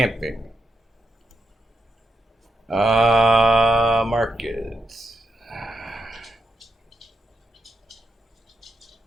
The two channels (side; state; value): both; normal; correlation 0.85